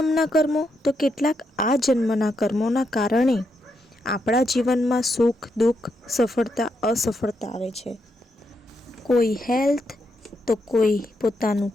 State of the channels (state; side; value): normal; both; correlation 0.81